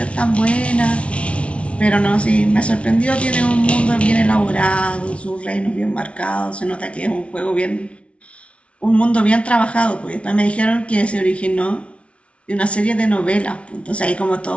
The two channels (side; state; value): right; late; 0.061 ms